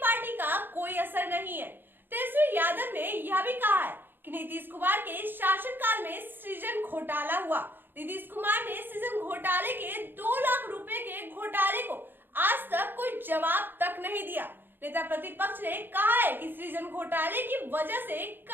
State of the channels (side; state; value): left; late; 0.097 ms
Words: का कोई असर नहीं है। तेजस्वी यादव ने यह भी कहा है कि नीतीश कुमार के शासनकाल में सृजन घोटाला हुआ। नीतीश कुमार ने सृजन घोटाले के 2 लाख रुपए के घोटाले को आज तक कोई जवाब तक नहीं दिया। नेता प्रतिपक्ष ने कहा है कि सृजन घोटाले की वजह से